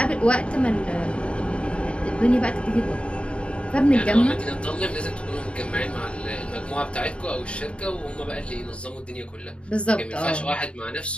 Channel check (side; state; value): right; late; 0.058 ms